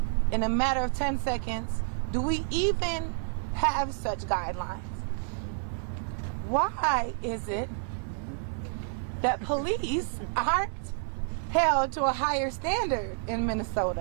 in a matter of 10 seconds, do we even have such guidelines? Why is it that police aren't held to a higher standard in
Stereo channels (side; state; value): left; silent; 58 dB below the other